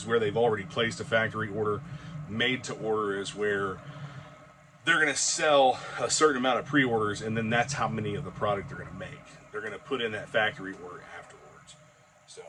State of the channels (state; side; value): identical; both; correlation 1.00